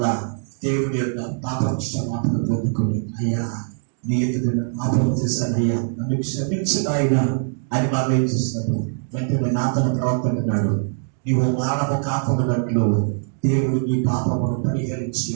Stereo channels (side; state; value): left; silent; digital silence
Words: దేవుని యొక్క పాప క్షమాపణ పొందుకొని, అయ్యా నీ ఎదుట పాపం చేశాను అయ్యా, నన్ను క్షమించు నాయనా అని మరలా ఏం చేస్తున్నాడు, వెంటనే నాతను ప్రవర్తకున్నాడు. నీవు మానవ కాపమున్నట్లు దేవుడు నీ పాపమును పరిహరించి